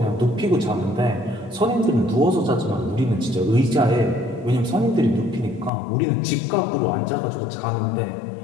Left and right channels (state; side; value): drops out; right; at 5.7 s